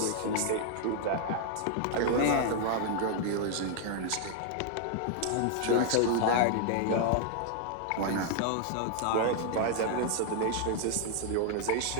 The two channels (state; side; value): different; both; correlation 0.00